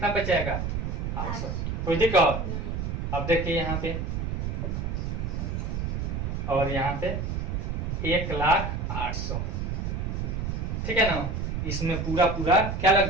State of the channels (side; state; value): right; noise; rumble, 2 dB below the sound